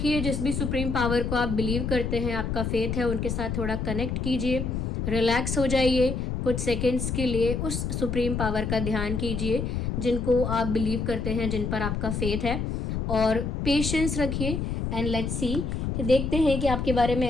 जिस भी सुप्रीम पावर को आप बिलीव करते हैं, आपका फेथ है, उनके साथ थोड़ा कनेक्ट कीजिए, रिलैक्स हो जाइए, कुछ सेकेंड्स के लिए उस सुप्रीम पावर का ध्यान कीजिए जिनको आप बिलीव करते हैं, जिन पर आपका फेथ है, और पेशेंस रखिए एंड लेट्स सी कि देखते हैं कि आपके बारे में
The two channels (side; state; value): left; noise; rumble, 2 dB below the sound